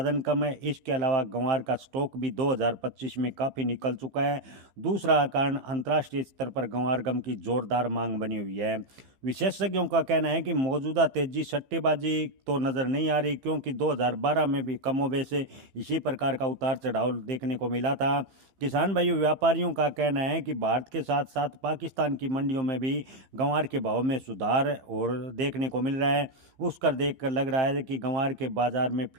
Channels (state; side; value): late; left; 15 ms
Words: कम है, इसके अलावा ग्वार का स्टॉक भी 2025 में काफ़ी निकल चुका है। दूसरा कारण अंतर्राष्ट्रीय स्तर पर ग्वार की जोरदार मांग बनी हुई है। विशेषज्ञों का कहना है कि मौजूदा तेजी सट्टेबाजी तो नज़र नहीं आ रही, क्योंकि 2012 में भी कमोबेश इसी प्रकार का उतार चढ़ाव देखने को मिला था। किसान भाइयों, व्यापारियों का कहना है कि भारत के साथ साथ पाकिस्तान की मंडियों में भी ग्वार के भाव में सुधार और देखने को मिल रहा है। उसकर देखकर लग रहा है कि ग्वार के बाजार में